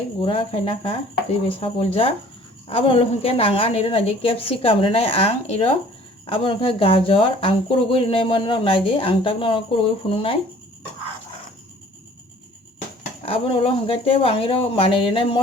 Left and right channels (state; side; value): normal; both; correlation 0.52